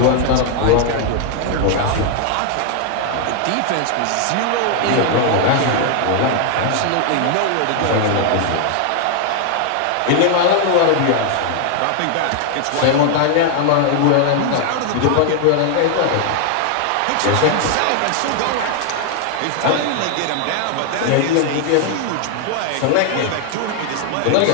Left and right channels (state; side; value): different; both; correlation 0.00